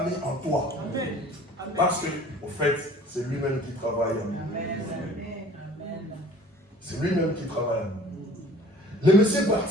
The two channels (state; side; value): normal; both; correlation 0.48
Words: mis en toi. Amen. Parce que, au fait, c'est lui-même qui travaille en nous. C'est lui-même qui travaille en nous. Le monsieur est